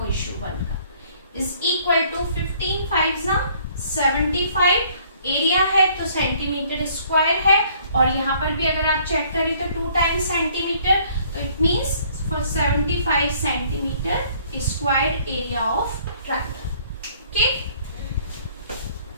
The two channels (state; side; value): inverted; both; correlation -0.60